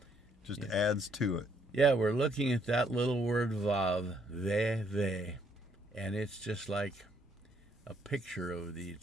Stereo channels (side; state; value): both; normal; correlation 0.69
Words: just adds to it. Yeah, we're looking at that little word Vav, they, and it's just like a picture of the